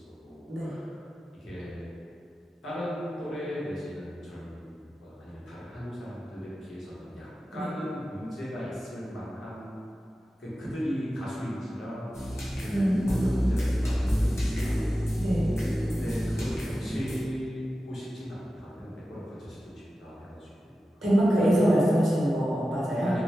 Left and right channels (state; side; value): normal; both; correlation 0.93